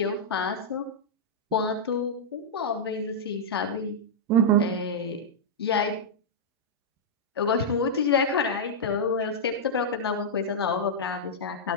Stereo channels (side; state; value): both; normal; correlation -0.08